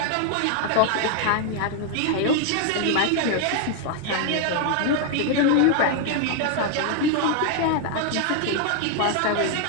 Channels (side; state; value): both; different; correlation 0.00